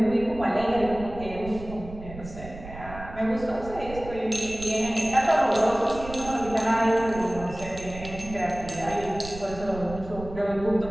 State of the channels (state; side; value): noise; right; rumble, 13 dB below the sound